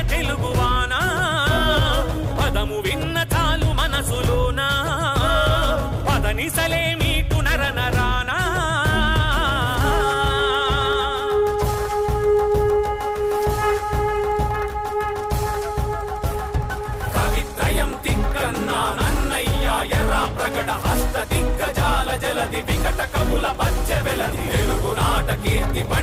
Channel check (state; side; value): identical; both; correlation 1.00